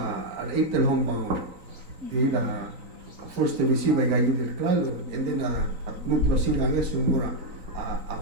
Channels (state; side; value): late; left; 3.9 ms